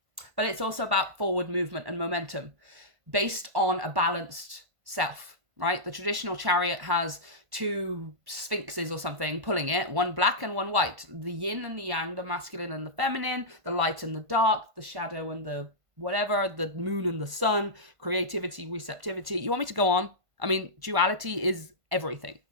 But it's also about forward movement and momentum based on a balanced self, right? The traditional Chariot has two sphinxes or something pulling it, one black and one white, the yin and the yang, the masculine and the feminine, the light and the dark, the shadow and the whatever, the moon and the sun, creativity, receptivity. You want me to go on? I mean, duality is everything,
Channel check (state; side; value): late; left; 1.5 ms